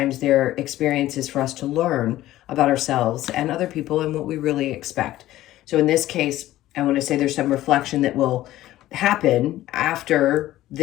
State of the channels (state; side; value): quieter; right; 14.9 dB